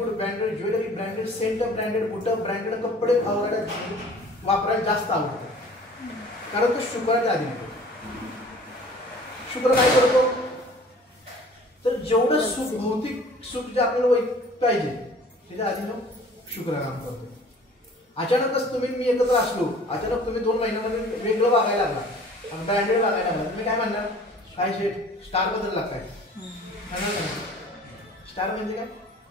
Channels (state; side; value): normal; both; correlation 0.49